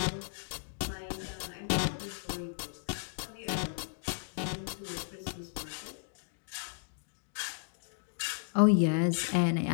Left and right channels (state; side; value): silent; right; digital silence